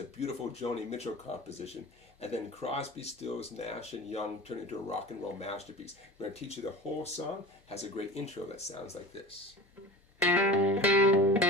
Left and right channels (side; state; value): both; normal; correlation 0.35